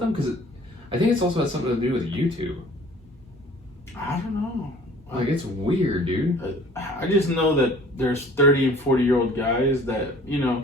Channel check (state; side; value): normal; both; correlation 0.50